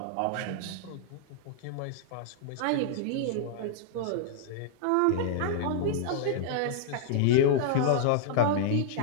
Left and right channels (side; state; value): both; different; correlation -0.01